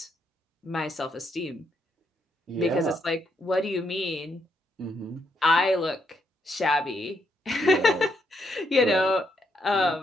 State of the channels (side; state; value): both; normal; correlation 0.76